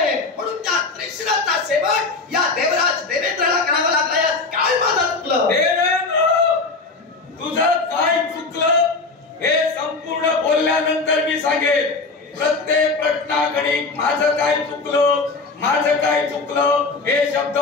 म्हणून त्या त्रिशिराचा शेवट या देवराज देवेंद्राला करावा लागला. यात काय माझं चुकलं? देवेंद्र, तुझं काय चुकलं हे संपूर्ण बोलल्यानंतर मी सांगेन. प्रत्येक प्रश्नाकडे माझं काय चुकलं हे शब्द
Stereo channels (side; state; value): right; quieter; 3.9 dB